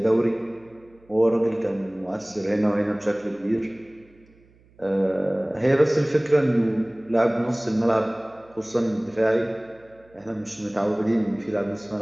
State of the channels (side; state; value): right; noise; hum, 30 dB below the sound